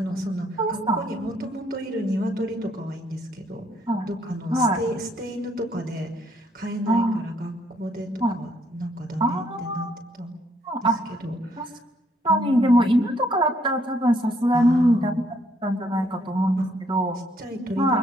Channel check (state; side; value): normal; both; correlation 0.69